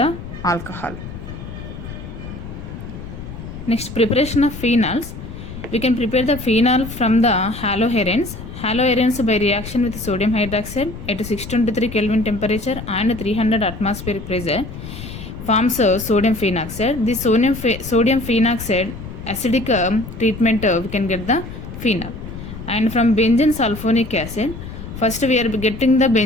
alcohol. Next, preparation of phenols. We can prepare the phenol from the haloarenes. Haloarenes by reaction with sodium hydroxide at 623 Kelvin temperature and 300 atmospheric pressure forms sodium phenoxide. This sodium phenoxide acidic treatment we can get the phenol. And from benzene sulfonic acid, first we are getting the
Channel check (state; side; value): noise; left; rumble, 11 dB below the sound